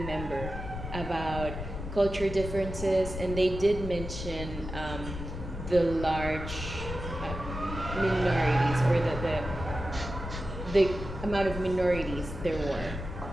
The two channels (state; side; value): noise; left; rumble, 8 dB below the sound